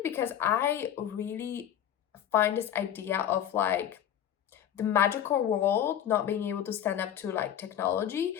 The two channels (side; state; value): right; quieter; 10.1 dB